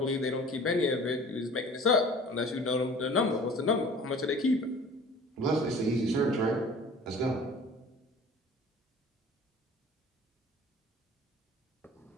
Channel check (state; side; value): normal; both; correlation 0.45